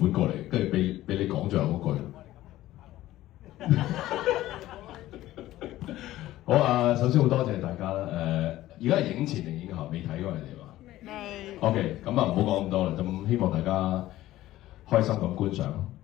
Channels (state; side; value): quieter; right; 15.2 dB